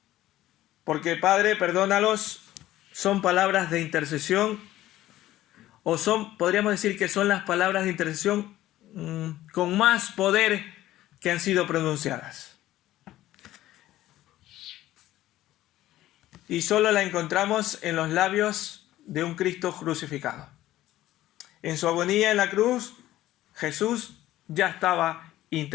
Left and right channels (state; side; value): quieter; right; 14.7 dB